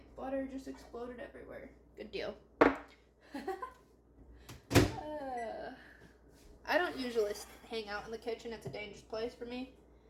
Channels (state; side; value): identical; both; correlation 1.00